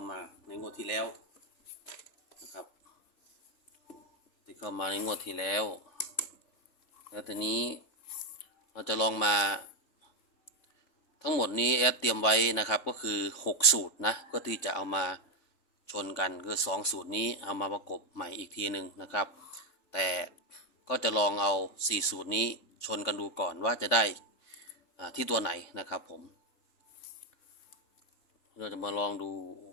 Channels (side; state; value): right; late; 3.6 ms